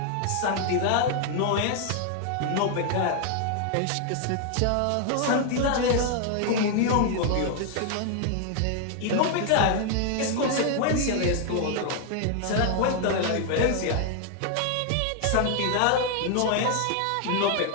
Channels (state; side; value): different; both; correlation 0.00